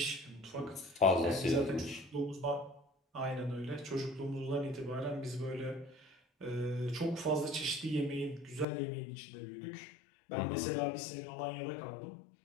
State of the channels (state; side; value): drops out; right; at 8.7 s